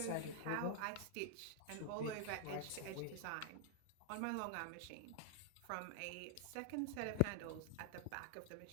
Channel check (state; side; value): different; both; correlation 0.00